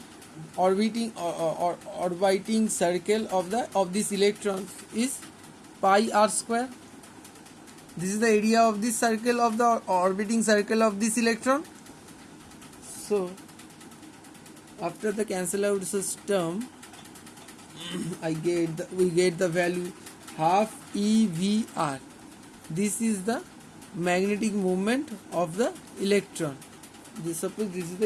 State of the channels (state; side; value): identical; both; correlation 1.00